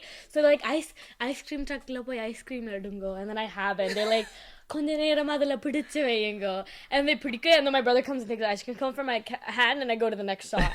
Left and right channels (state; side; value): identical; both; correlation 1.00